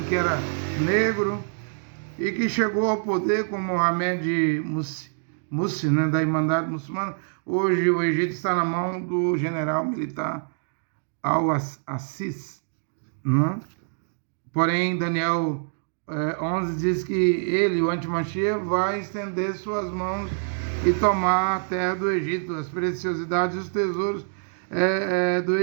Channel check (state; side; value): silent; left; digital silence